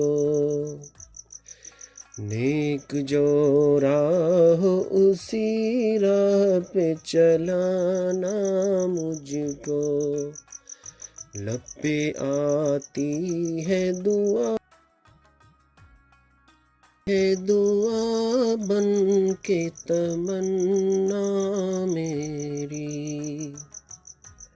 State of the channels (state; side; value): identical; both; correlation 1.00